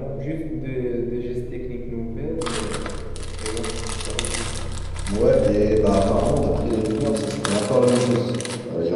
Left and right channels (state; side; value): identical; both; correlation 1.00